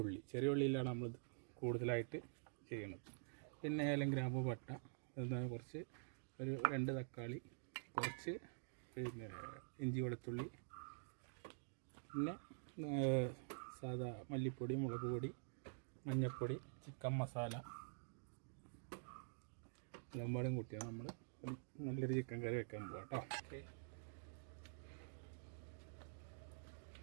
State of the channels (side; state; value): left; silent; digital silence